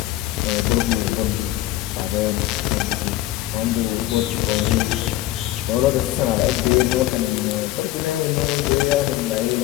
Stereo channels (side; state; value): right; quieter; 15.2 dB